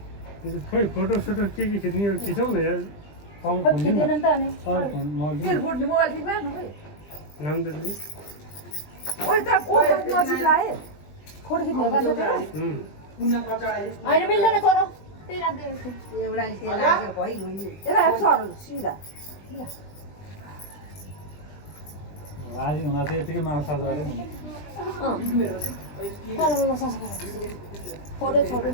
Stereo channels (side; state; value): right; late; 20 ms